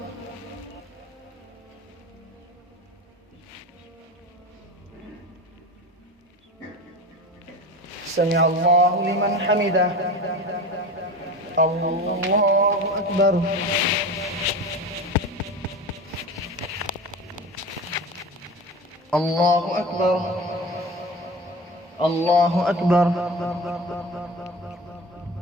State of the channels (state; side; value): normal; both; correlation 0.31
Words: سمع الله لمن حمده. الله أكبر. الله أكبر. الله أكبر.